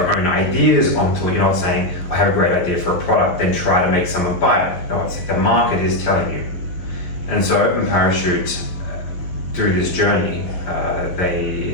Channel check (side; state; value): right; late; 12 ms